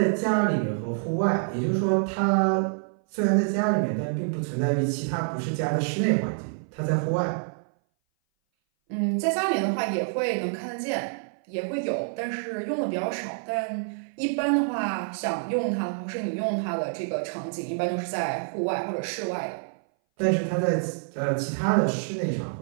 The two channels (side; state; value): left; silent; 58 dB below the other